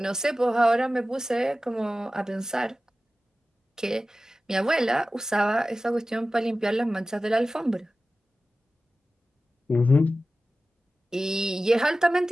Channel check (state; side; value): normal; both; correlation 0.95